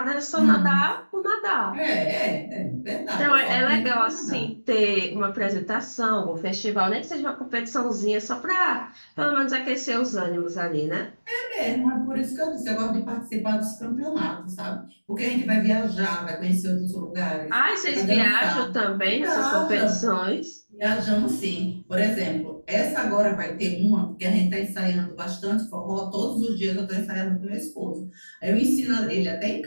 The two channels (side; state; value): both; inverted; correlation -1.00